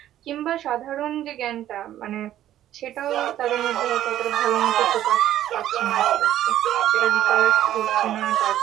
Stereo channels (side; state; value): left; quieter; 12.4 dB